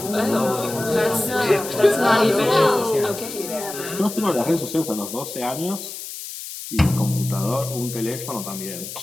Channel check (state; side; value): noise; left; hiss, 10 dB below the sound